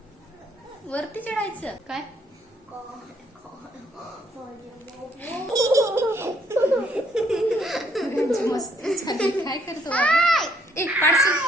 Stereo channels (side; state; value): both; normal; correlation 0.68